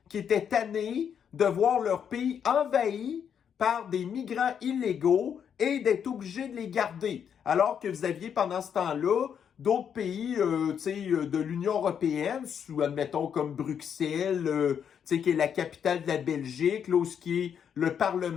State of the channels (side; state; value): right; quieter; 8.0 dB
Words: qui étaient tannés de voir leur pays envahi par des migrants illégaux et d'être obligés de les garder. Alors que vous aviez pendant ce temps-là d'autres pays de l'Union européenne, admettons comme Bruxelles, qui est la capitale de la Belgique, là, où ce qui est le